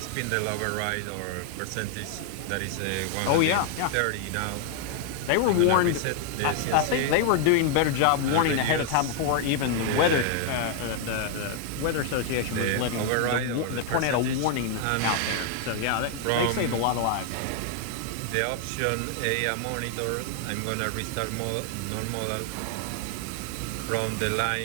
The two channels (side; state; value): both; different; correlation 0.00